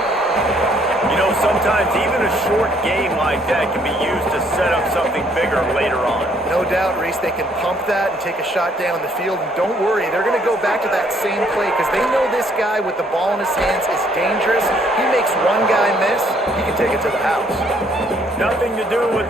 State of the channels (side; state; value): both; normal; correlation 0.65